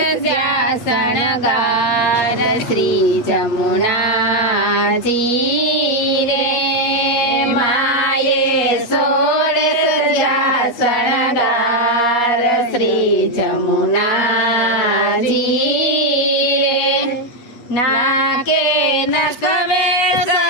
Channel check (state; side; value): late; right; 8.5 ms